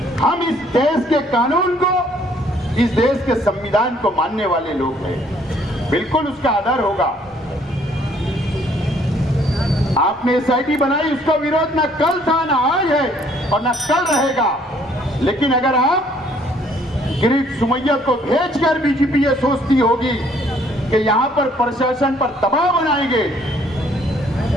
हम इस देश के कानून को, इस देश के संविधान को मानने वाले लोग हैं, बिल्कुल उसका आदर होगा। आपने एसआईटी बनाई, उसका विरोध ना कल था, ना आज है और ना कल रहेगा, लेकिन अगर आप गिरीश सुमैया को भेजकर बीजेपी ये सोचती होगी कि यहां पर प्रशासन पर दबाव बनाएंगे,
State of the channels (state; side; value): normal; both; correlation 0.63